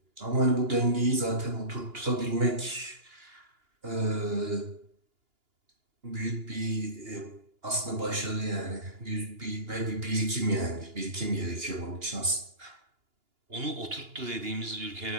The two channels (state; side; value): late; left; 2.8 ms